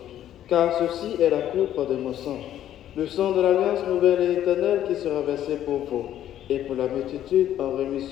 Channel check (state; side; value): quieter; right; 11.6 dB